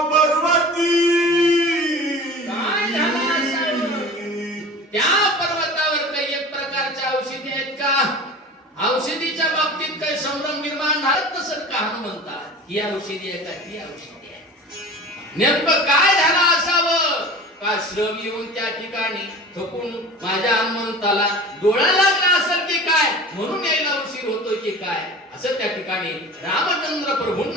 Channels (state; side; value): normal; both; correlation 0.37